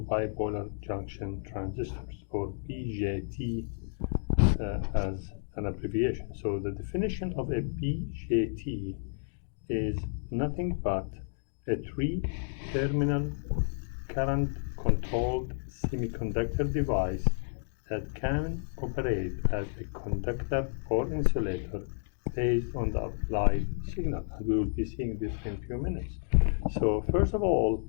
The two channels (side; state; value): right; silent; digital silence